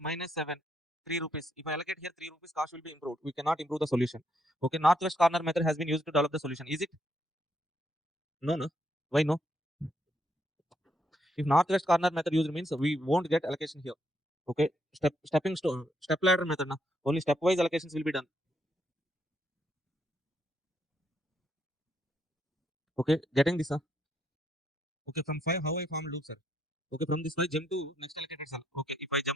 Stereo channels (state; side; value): normal; both; correlation 0.75